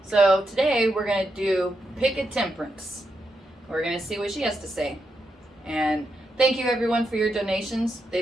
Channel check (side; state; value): both; normal; correlation 0.84